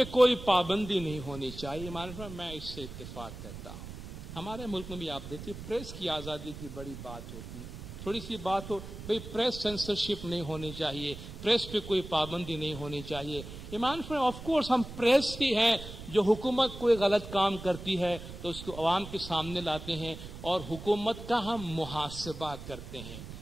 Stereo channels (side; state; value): right; noise; rumble, 11 dB below the sound